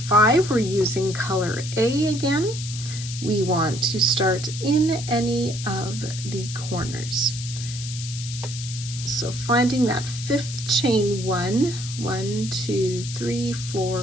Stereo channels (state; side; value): noise; left; hiss, 10 dB below the sound